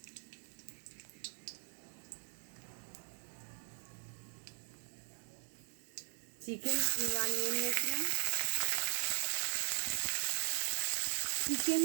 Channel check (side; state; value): left; silent; digital silence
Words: চিকেন কিমা নিয়ে নিয়েছিলাম, চিকেন